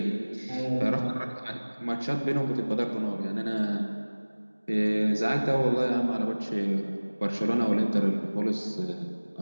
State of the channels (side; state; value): both; inverted; correlation -1.00